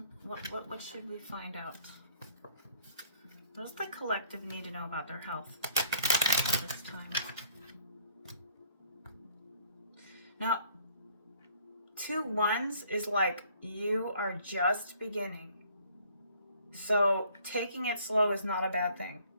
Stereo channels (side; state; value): both; inverted; correlation -0.59